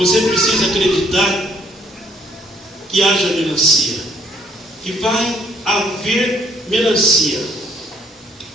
precisa acreditar que haja melancia, que vai haver melancia.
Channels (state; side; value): normal; both; correlation 0.66